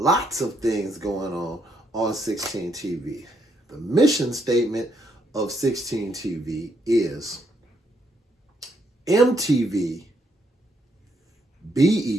of things going on 16 TV. The mission statement of 16 TV is MTV,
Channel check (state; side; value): normal; both; correlation 0.74